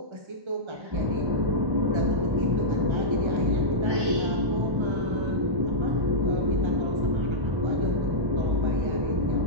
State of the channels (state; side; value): late; left; 1.3 ms